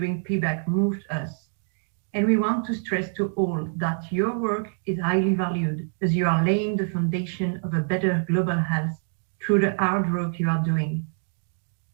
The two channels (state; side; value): silent; left; 59 dB below the other